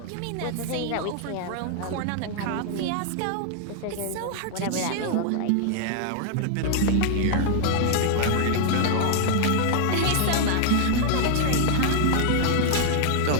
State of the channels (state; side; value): different; both; correlation 0.00